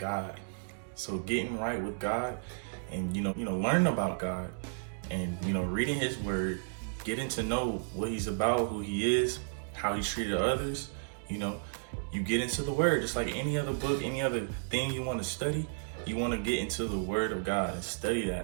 So getting right with God and, learning about God and, reading his word, getting to know what he's about, who he is, how he treated others, you get into the word, just like any other book, any other thing you want to study, you want to get into the word of God and study that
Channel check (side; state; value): left; silent; digital silence